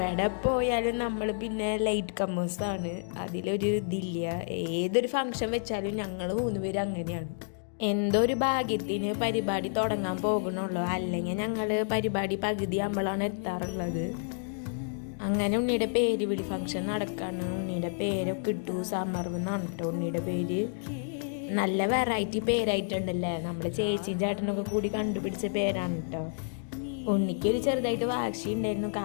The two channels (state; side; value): silent; right; digital silence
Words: പോയാലും നമ്മൾ പിന്നെ ലൈറ്റ് കമ്മേഴ്സാണ്, അതിലൊരു ഇതില്ല. ഏതൊരു ഫംഗ്ഷൻ വെച്ചാലും ഞങ്ങൾ 3 പേര് അങ്ങനെയാണ്. എന്തോ ഒരു ഭാഗ്യത്തിന് പരിപാടി തുടങ്ങാൻ പോകണുള്ളൂ, അല്ലെങ്കിൽ ഞങ്ങൾ പരിപാടി പകുതി ആകുമ്പോഴാണ് എത്താറുള്ളത്. അങ്ങനെ ഉണ്ണിയുടെ പേര് വിളി ഫംഗ്ഷൻ നടക്കാണ്. ഉണ്ണിയുടെ പേരൊക്കെ ഇട്ടു, സമർവെന്നാണ് കേട്ടോ ഉണ്ണിയുടെ പേര്. നല്ല വെറൈറ്റി പേരായിട്ടുണ്ടല്ലേ, നമ്മുടെ ചേച്ചി ചേട്ടനൊക്കെ കൂടി കണ്ടുപിടിച്ച പേരാണ് കേട്ടോ. ഉണ്ണിക്കൊരു ചെറുതായിട്ട് വാശി ഉണ്ടായിരുന്നു,